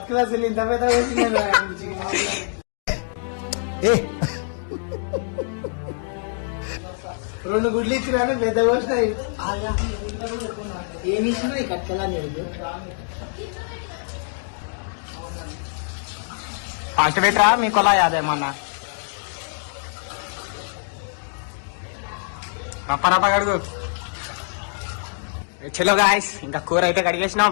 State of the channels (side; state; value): right; silent; digital silence